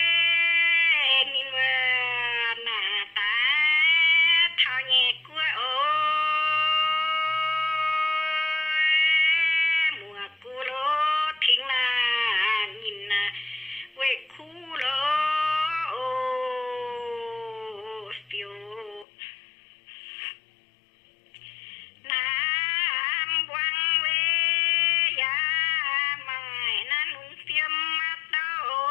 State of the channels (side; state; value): right; drops out; at 19.1 s